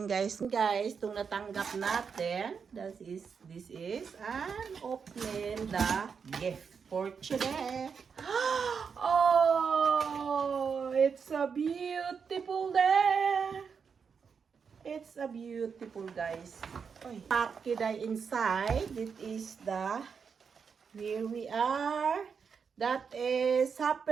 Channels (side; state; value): left; quieter; 6.1 dB